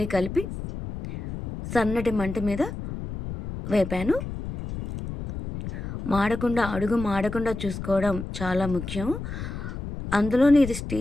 కలిపి సన్నటి మంట మీద వేపాను. అడుగు మాడకుండా చూసుకోవడం చాలా ముఖ్యం. అందులోని ఇది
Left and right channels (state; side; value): noise; left; rumble, 8 dB below the sound